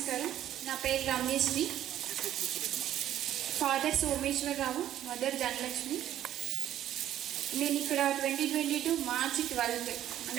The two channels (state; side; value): quieter; left; 11.8 dB